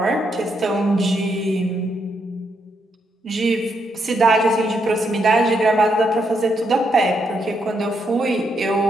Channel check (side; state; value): both; normal; correlation 0.78